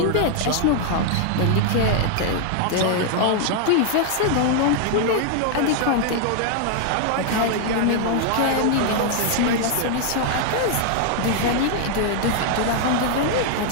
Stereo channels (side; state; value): both; different; correlation 0.00